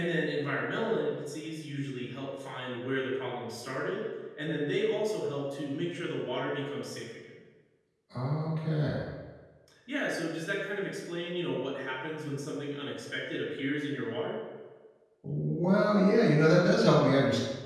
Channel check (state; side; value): identical; both; correlation 1.00